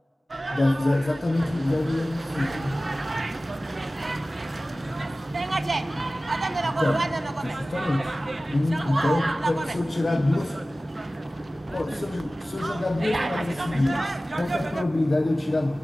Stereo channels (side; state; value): both; normal; correlation 0.96